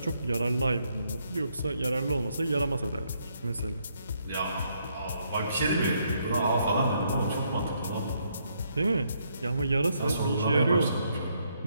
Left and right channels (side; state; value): both; inverted; correlation -0.74